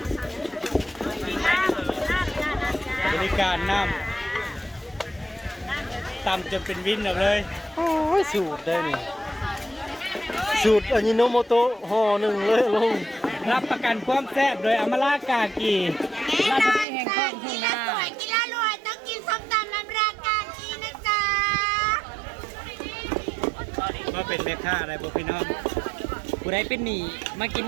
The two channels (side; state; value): left; drops out; at 16.9 s